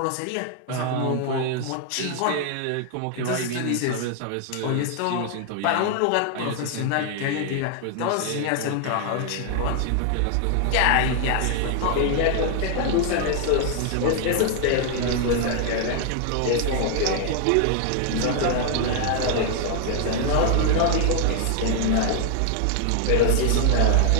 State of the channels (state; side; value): different; both; correlation 0.00